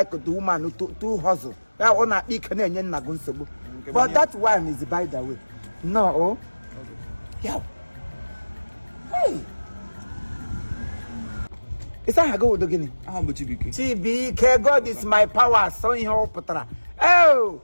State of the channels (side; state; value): both; inverted; correlation -1.00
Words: the woman to hustle. I want to eat Canadian Nagunsobu. But that one is by the way. No. Yeah. Hey. Is that a go to Guinea? TBK, God is my power. So in your Patra. Oh,